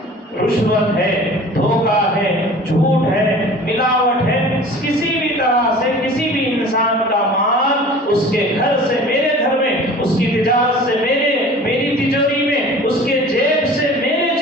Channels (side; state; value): both; normal; correlation 0.43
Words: رشوت ہے، دھوکہ ہے، جھوٹ ہے، ملاوٹ ہے، کسی بھی طرح سے کسی بھی انسان کا مال اس کے گھر سے میرے گھر میں، اس کی تجارت سے میری تجوری میں، اس کے جیب سے میرے